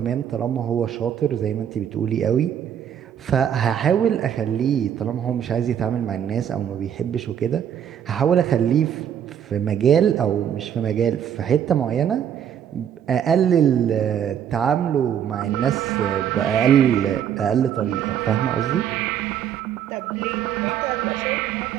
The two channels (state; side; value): quieter; left; 9.2 dB